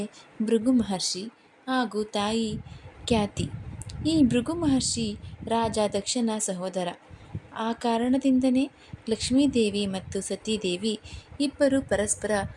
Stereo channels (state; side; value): identical; both; correlation 1.00